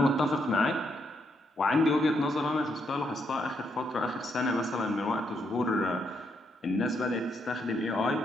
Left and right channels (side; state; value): both; normal; correlation 0.77